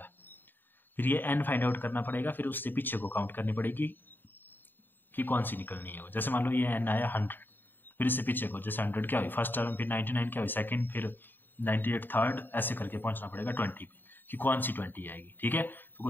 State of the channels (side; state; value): right; late; 0.093 ms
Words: फिर ये n फाइंड आउट करना पड़ेगा, फिर उससे पीछे को काउंट करनी पड़ेगी कि कौन सी निकलनी है वो। जैसे मान लो ये n आया 100, फिर इससे पीछे को जैसे 100 क्या हुई फर्स्ट टर्म, फिर 99 क्या हुई सेकंड, फिर 98 थर्ड, ऐसे करके पहुंचना पड़ेगा 20 पे कि कौन सी 20 आएगी। ठीक है, तो